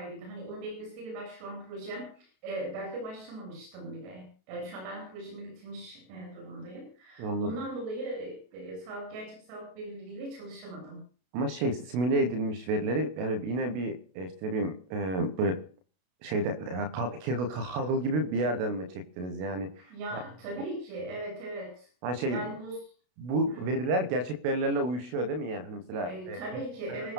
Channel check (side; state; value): left; late; 32 ms